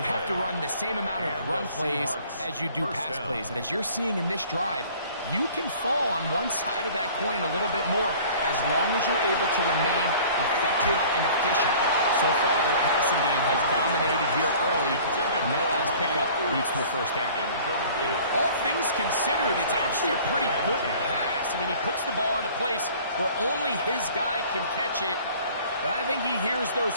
have to run the same amount of run plays as you do pass plays. And as you're seeing in this drive, you can fall on one side of that coin a little bit more as long as you're able to remain effective and efficient. So far, their passing game has dominated here early, and that last pickup leads to a first down. All things considered, it's actually a pretty good pass. I mean, he puts the ball in a place where only his guy can catch it. But I think he hears those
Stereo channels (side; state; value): both; inverted; correlation -0.49